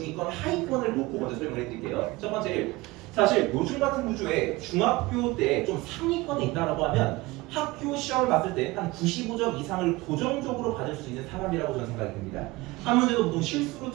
하위권을 놓고 먼저 설명을 해드릴게요. 첫 번째 사실 요즘 같은 구조에 중학교 때 좀 상위권에 있다라고 하면 학교 시험을 봤을 때 한 95점 이상을 고정적으로 받을 수 있는 사람이라고 저는 생각이 듭니다. 한 문제도 보통 실수로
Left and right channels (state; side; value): quieter; left; 21.3 dB